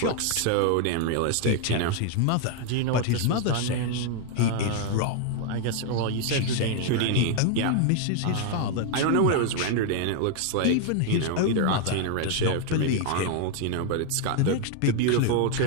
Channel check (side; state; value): both; different; correlation 0.00